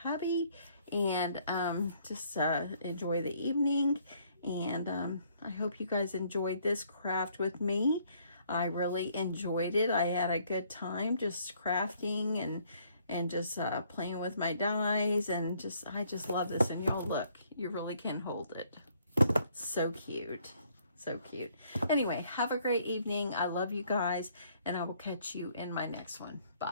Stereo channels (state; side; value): inverted; both; correlation -0.65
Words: and just enjoy the evening. And I hope you guys enjoyed this craft with me. I really enjoyed it. I had a good time just crafting and just playing with my dies, and I just love this. And y'all look, you really can hold it. So cute. So cute. Anyway, have a great evening. I love you guys, and I will catch you in my next one.